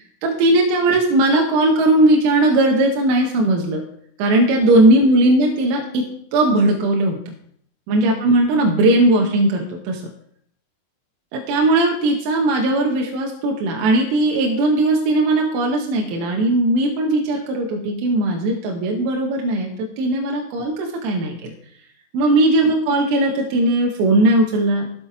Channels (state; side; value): late; left; 23 ms